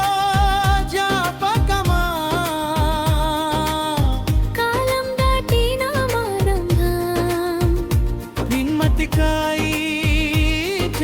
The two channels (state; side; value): identical; both; correlation 1.00